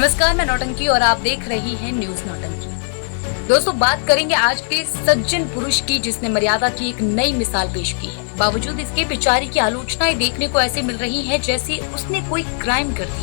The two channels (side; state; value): right; silent; 67 dB below the other